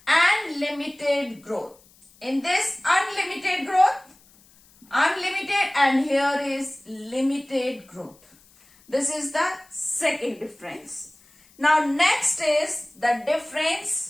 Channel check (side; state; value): left; noise; hiss, 29 dB below the sound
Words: and limited growth. In this, unlimited growth, unlimited, and here is limited growth. This is the second difference. Now next is the